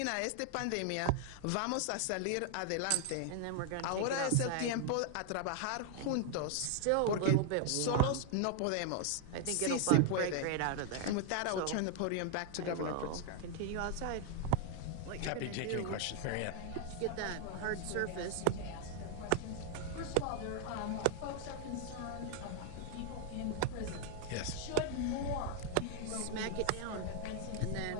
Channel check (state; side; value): different; both; correlation 0.00